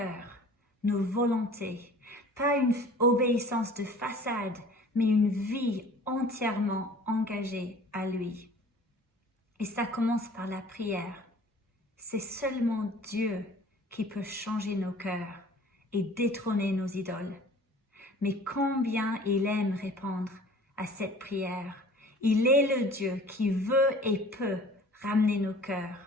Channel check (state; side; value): normal; both; correlation 0.47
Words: nos volontés, pas une obéissance de façade, mais une vie entièrement engagée à lui. Et ça commence par la prière. C'est seulement Dieu qui peut changer nos cœurs et détrôner nos idoles. Mais combien il aime répondre à cette prière. Il est le Dieu qui veut et peut ramener nos